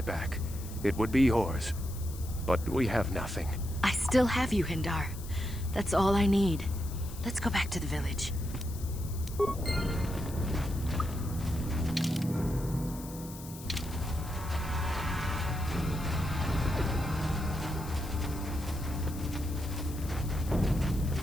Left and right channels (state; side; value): noise; left; hiss, 15 dB below the sound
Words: back, it would be yours. But we have nothing. I still have you, Hendar. That's all I need. Let's go back to the village.